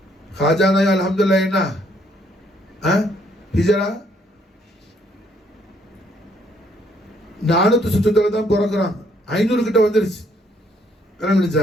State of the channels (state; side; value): normal; both; correlation 0.68